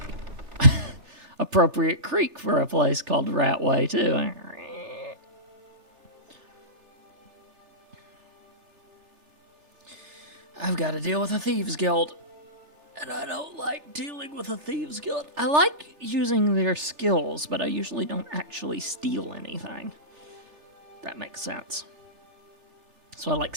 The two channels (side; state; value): left; late; 3.4 ms